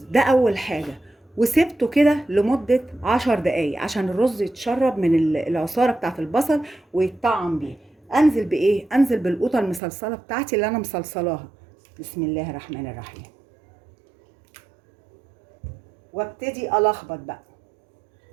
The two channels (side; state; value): left; drops out; at 9.8 s